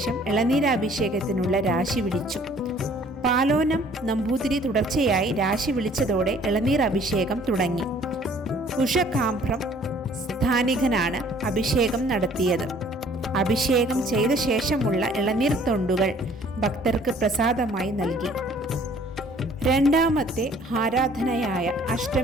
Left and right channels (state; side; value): normal; both; correlation 0.56